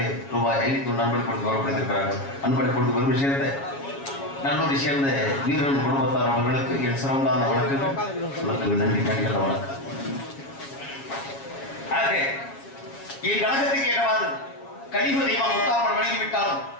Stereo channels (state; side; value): late; right; 7.3 ms